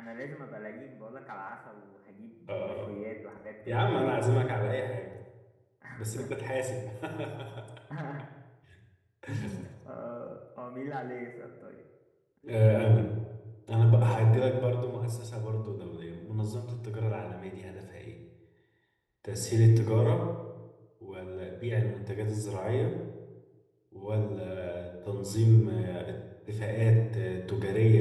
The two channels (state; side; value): identical; both; correlation 1.00